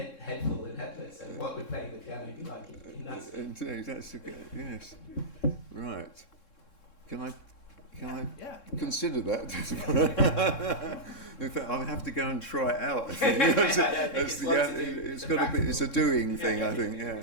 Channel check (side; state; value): right; late; 3.7 ms